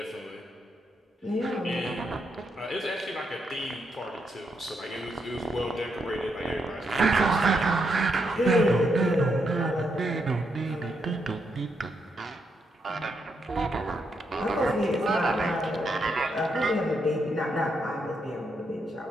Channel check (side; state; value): both; normal; correlation 0.80